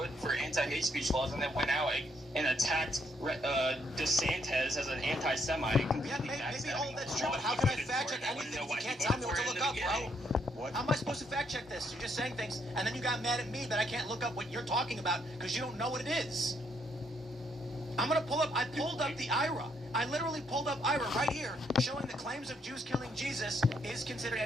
for anti-hate speech laws and then went out and attacked DeSantis as an anti-Semite. Yeah, maybe all that's true, but how can I fact check anything if you can't tell me what to look up, bro? What? How am I supposed to fact check this? You're just saying things, and then you got mad at me that I can't look up what you're talking about because you don't know what it is. I'm gonna pull up. I pulled up the IRA. I literally pulled up IRA right here, showing the claims of Jews killing Jesus is considered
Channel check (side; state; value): both; normal; correlation 0.73